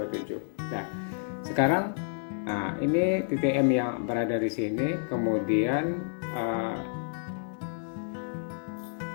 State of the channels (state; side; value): silent; right; 58 dB below the other